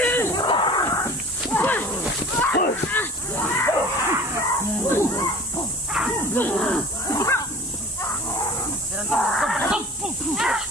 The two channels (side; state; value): both; normal; correlation 0.42